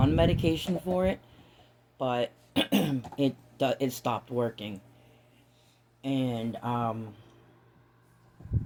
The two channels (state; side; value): identical; both; correlation 1.00